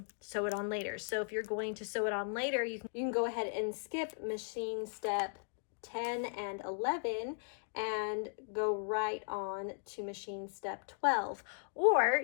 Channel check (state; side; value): silent; right; digital silence